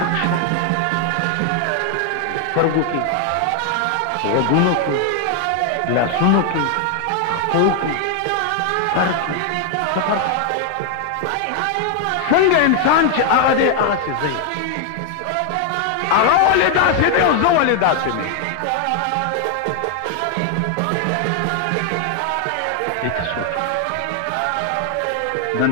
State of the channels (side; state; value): both; different; correlation 0.00